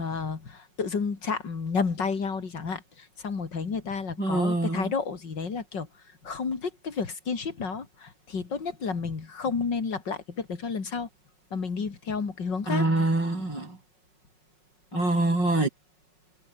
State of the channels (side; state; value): right; late; 5.4 ms